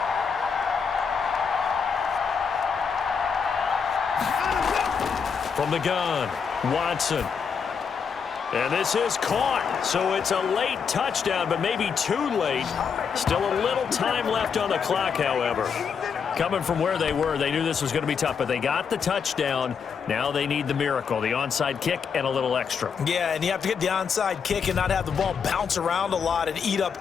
From the gun, Watson. And this is caught, so it's a late touchdown, but maybe too late. Still a little time left on the clock, however. Coming from where they were, they knew this was going to be tough, but they got the touchdown. Now they need the miracle, the onside kick and a little extra. Yeah, and you have to get the onside kick and not have the ball bounce around a lot and eat up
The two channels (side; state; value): right; quieter; 6.4 dB